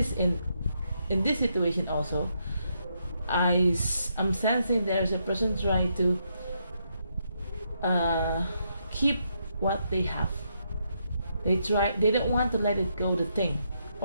in this situation also, I'm sensing there's a person trying to keep what they have. They don't want to let it go, the thing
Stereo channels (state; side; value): inverted; both; correlation -0.78